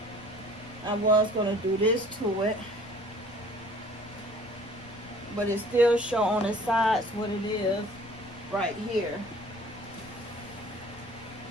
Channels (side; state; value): left; noise; rumble, 20 dB below the sound